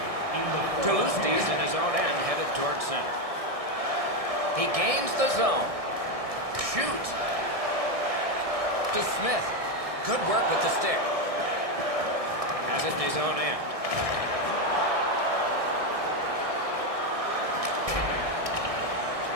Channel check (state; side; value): late; left; 1.6 ms